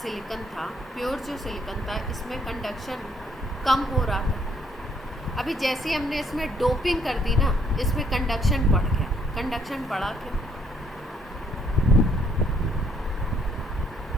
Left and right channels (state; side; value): normal; both; correlation 0.68